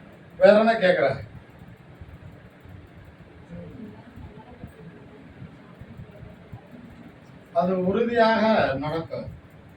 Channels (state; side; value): identical; both; correlation 1.00